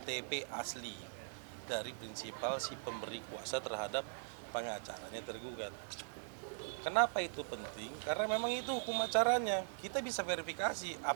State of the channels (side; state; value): left; silent; digital silence